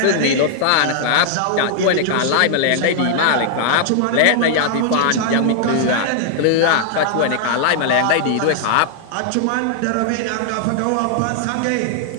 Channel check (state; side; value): different; both; correlation -0.01